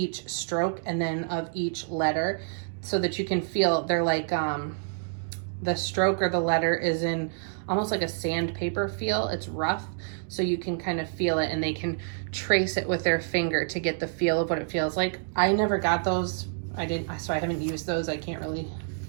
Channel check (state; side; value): silent; left; digital silence